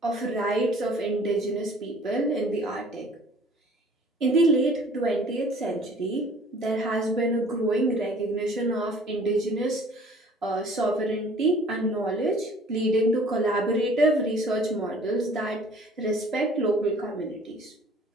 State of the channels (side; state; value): both; normal; correlation 0.52